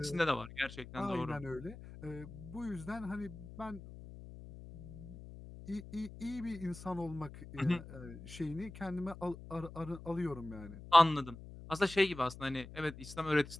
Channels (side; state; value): left; noise; hum, 14 dB below the sound